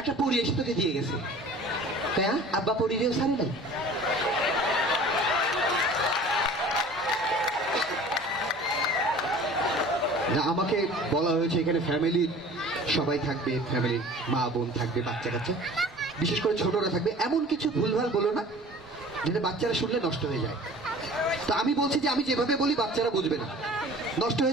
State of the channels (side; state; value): both; normal; correlation 0.45